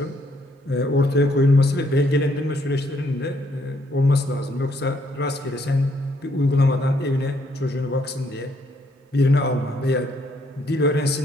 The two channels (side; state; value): both; normal; correlation 0.70